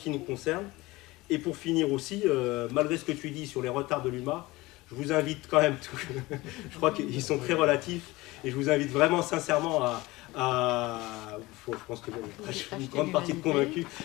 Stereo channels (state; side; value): quieter; right; 20.6 dB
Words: nous concerne. Et pour finir aussi, malgré ce que tu dis sur les retards de l'UMA, je vous invite quand même, je crois qu'ils sont très relatifs, et je vous invite vraiment sincèrement je pense que je suis une grande partie de convaincus